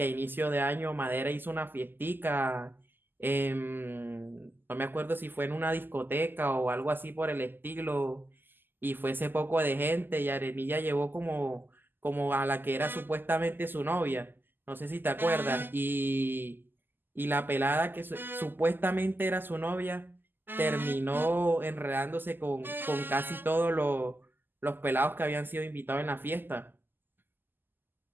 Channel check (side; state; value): left; late; 0.093 ms